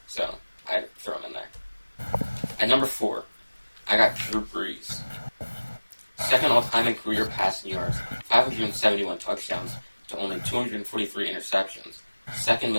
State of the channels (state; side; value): inverted; both; correlation -1.00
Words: so I throw him in there. At number 4, I got Drew Brees. 2nd all-time in career passing yards, 571 touchdowns to only 243 interceptions. 2nd